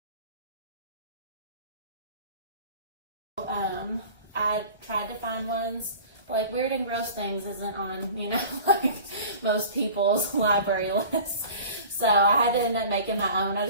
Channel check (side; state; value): both; inverted; correlation -0.42